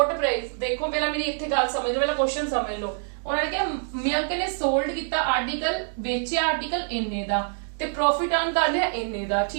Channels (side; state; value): left; silent; digital silence